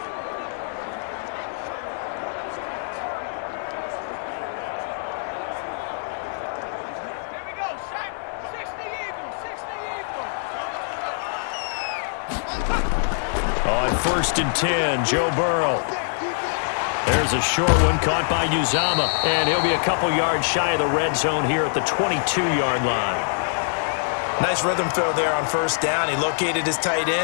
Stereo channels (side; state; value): right; silent; digital silence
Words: On 1st and 10, Joe Burrow. There's a short one caught by Uzama, and he'll be a couple yards shy of the red zone here at the 22-yard line. Nice rhythm throw there on 1st down. He located his tight